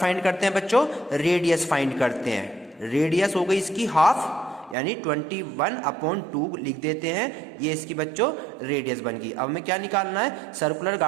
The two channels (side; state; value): left; drops out; at 4.8 s